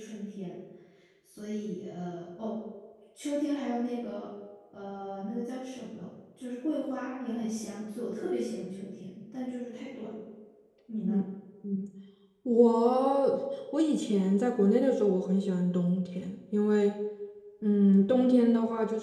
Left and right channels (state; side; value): identical; both; correlation 1.00